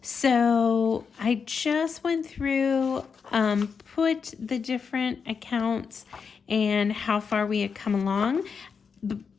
So I just went through, put the different accounts and how far we had come along.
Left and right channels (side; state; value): right; quieter; 5.9 dB